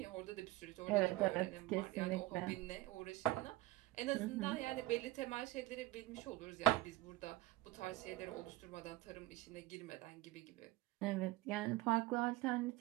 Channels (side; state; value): left; quieter; 17.2 dB